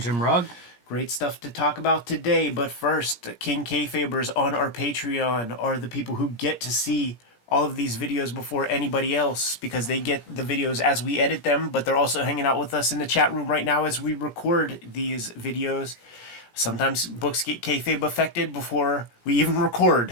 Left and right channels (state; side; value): late; right; 17 ms